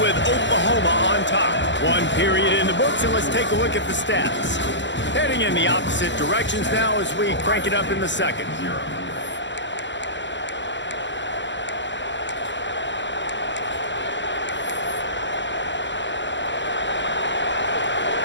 with Oklahoma on top. 1 period in the books, and let's take a look at the stats. Heading in the opposite directions now as we crank it up in the 2nd.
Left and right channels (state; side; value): late; right; 0.53 ms